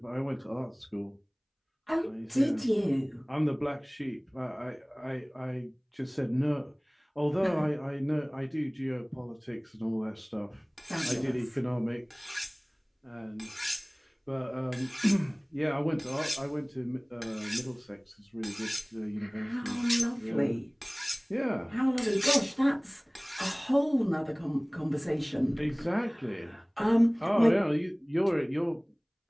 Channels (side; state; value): both; identical; correlation 1.00